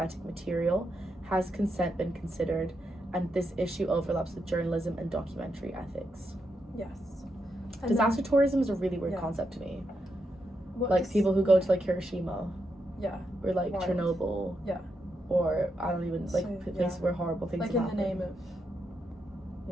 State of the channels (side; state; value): both; normal; correlation 0.83